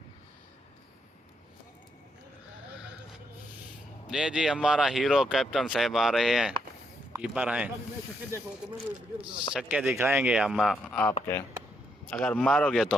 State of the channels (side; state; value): both; normal; correlation 0.77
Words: ये जी हमारा हीरो कैप्टन साहब आ रहे हैं, कीपर हैं। छक्के दिखाएंगे हम आपके, अगर मारोगे